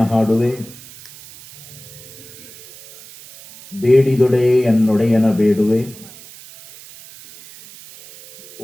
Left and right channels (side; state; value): right; noise; hiss, 19 dB below the sound